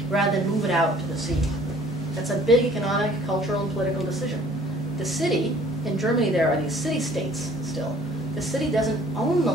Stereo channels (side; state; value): both; normal; correlation 0.54